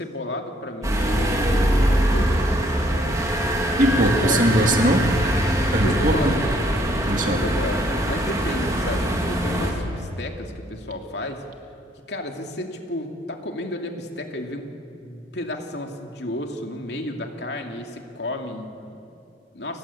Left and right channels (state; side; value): normal; both; correlation 0.65